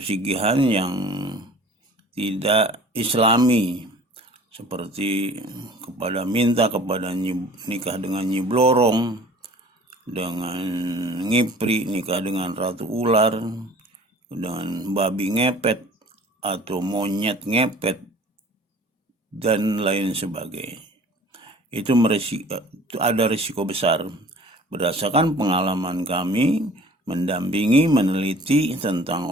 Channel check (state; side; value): normal; both; correlation 0.47